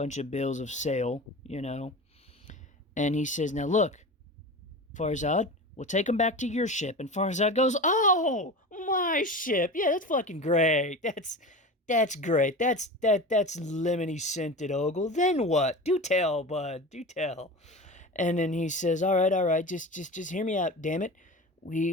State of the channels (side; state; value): both; normal; correlation 0.30